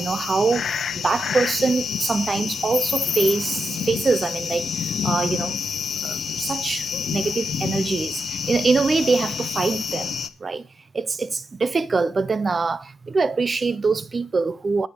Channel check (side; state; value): both; normal; correlation 0.86